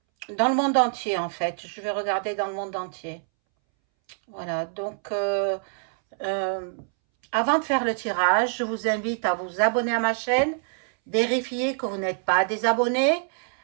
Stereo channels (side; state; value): left; silent; 61 dB below the other